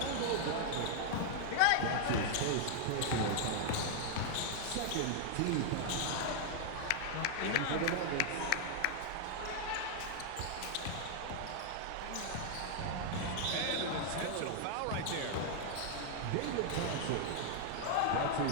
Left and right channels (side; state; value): both; different; correlation -0.01